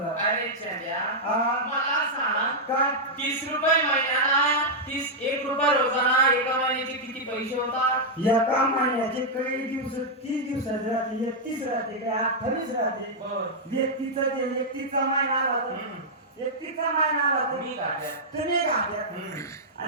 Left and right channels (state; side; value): normal; both; correlation -0.06